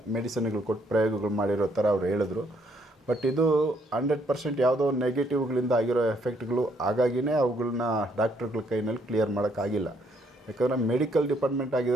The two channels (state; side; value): normal; both; correlation 0.70